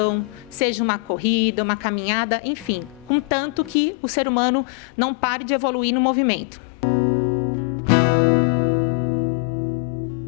seja uma corrida, uma caminhada, enfim, contanto que o ser humano não pare de evoluir no movimento.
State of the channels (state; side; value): drops out; right; at 3.8 s